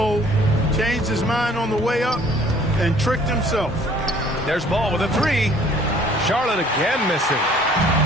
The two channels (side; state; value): both; normal; correlation 0.56